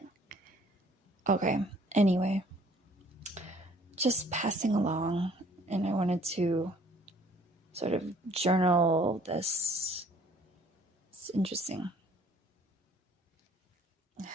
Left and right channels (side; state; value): both; normal; correlation 0.58